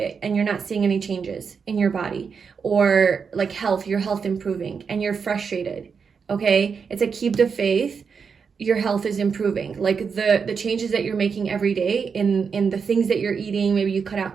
and you're not seeing any changes in your body, or like health, your health improving and you're frustrated. Okay. It's a keep the faith. Your health is improving. Like the changes that you're making every day in the things that you're eating, maybe you cut out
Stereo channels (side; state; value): left; quieter; 5.9 dB